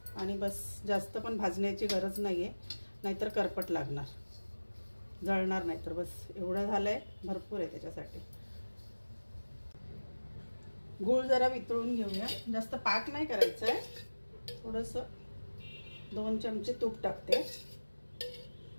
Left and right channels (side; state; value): both; inverted; correlation -1.00